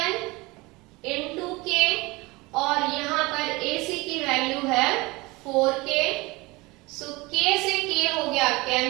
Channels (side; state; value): left; quieter; 23.2 dB